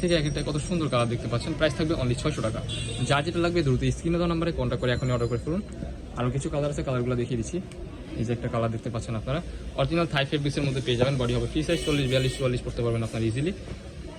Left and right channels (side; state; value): both; identical; correlation 1.00